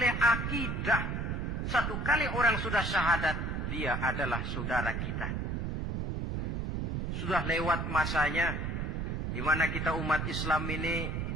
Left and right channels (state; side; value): noise; right; rumble, 2 dB below the sound